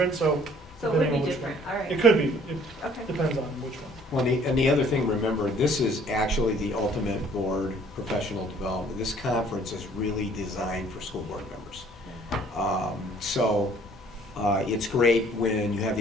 so So it would depending be on which different, one. all right. It could be, it Okay. depends on which one. Well, and the other thing, remember, this is actually the ultimate board professional development. This conference is really designed for school board members. So it's great when you have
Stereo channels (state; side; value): normal; both; correlation 0.57